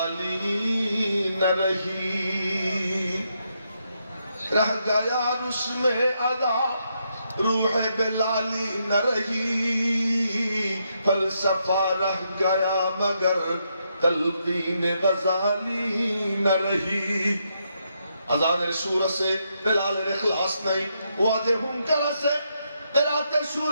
न रही, रह गया उसमें अदा रूह बिलाली न रही, फलसफा रह गया मगर तलकीन गजाली न रही। अजानेर सूर से बिलालेर इखलास नहीं, वादे हुंकार से तेराते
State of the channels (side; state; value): both; inverted; correlation -0.79